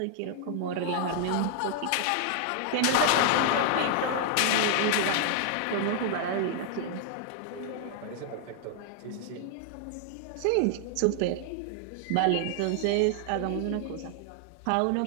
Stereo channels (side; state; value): both; different; correlation 0.00